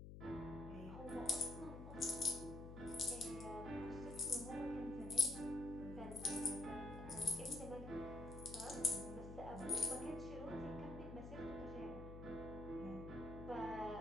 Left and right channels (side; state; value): left; noise; hum, 10 dB below the sound